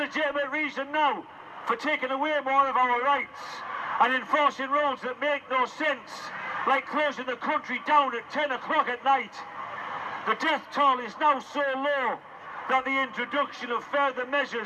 reason now for taking away more of our rights and enforcing rules that make no sense, like closing the country down at 10 o'clock at night? The death toll is now so low that the introduction of further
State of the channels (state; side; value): identical; both; correlation 1.00